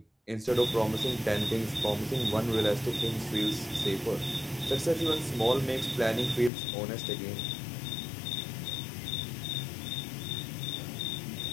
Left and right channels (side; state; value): right; drops out; at 6.5 s